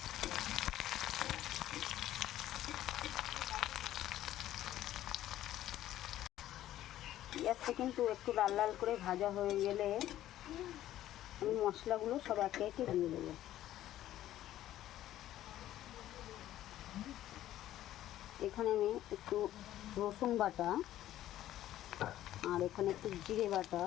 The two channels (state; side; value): quieter; right; 13.2 dB